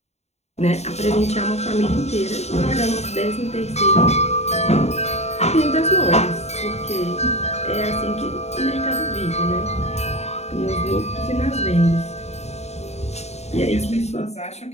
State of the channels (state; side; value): late; right; 0.32 ms